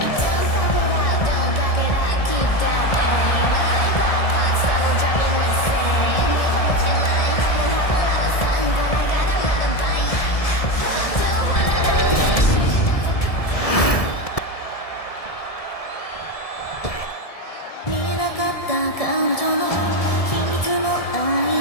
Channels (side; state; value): right; late; 1.7 ms